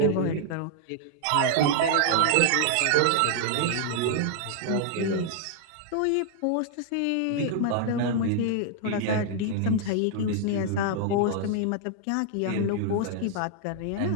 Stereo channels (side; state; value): both; different; correlation -0.01